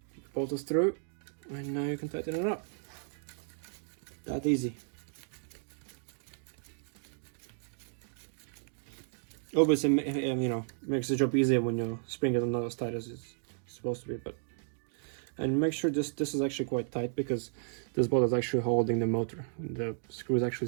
The bolt is through, and now you can tighten it up. That easy. Obviously, you know, makes the job easier when you spring it not as tight as it's supposed to be, but. And make sure this is actually quite tight, because this bolt is actually holding the motor. The screw is actually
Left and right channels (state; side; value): silent; left; digital silence